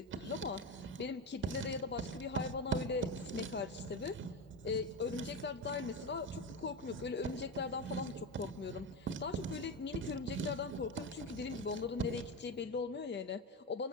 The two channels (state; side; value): normal; both; correlation 0.18